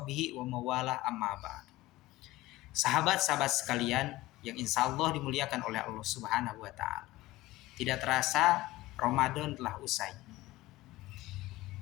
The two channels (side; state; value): right; quieter; 18.0 dB